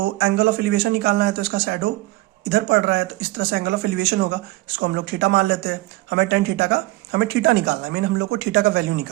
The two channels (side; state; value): left; quieter; 19.4 dB